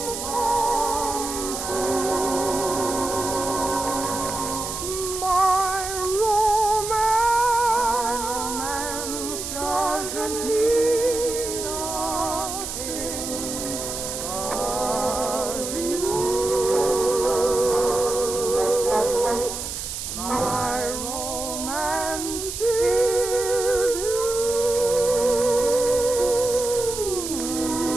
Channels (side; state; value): right; noise; hiss, 6 dB below the sound